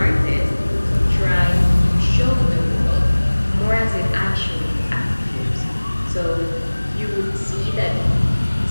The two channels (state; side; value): inverted; both; correlation -1.00